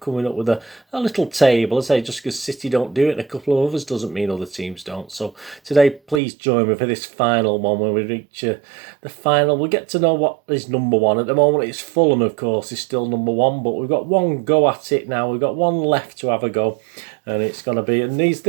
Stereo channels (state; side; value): drops out; left; at 6.2 s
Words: up with a little table. I say, just because City don't do it and a couple of others doesn't mean other teams don't. So today, please join me for this final one when we reach the final. We'll get to know what is number one. At the moment, it's Fulham, of course, is still number one, but we've got one go at it now. We've got one left to have a go. And it's going to be, and